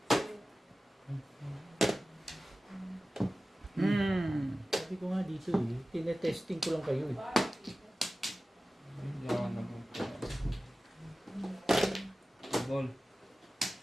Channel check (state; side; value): normal; both; correlation 0.96